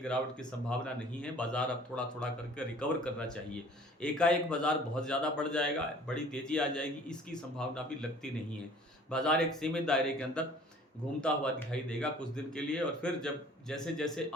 की संभावना नहीं है। बाजार अब थोड़ा थोड़ा करके रिकवर करना चाहिए। एकाएक बाजार बहुत ज़्यादा बढ़ जाएगा, बड़ी तेज़ी आ जाएगी, इसकी संभावना भी लगती नहीं है। बाजार एक सीमित दायरे के अंदर घूमता हुआ दिखाई देगा कुछ दिन के लिए, और फिर जब जैसे जैसे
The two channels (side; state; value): both; normal; correlation 0.51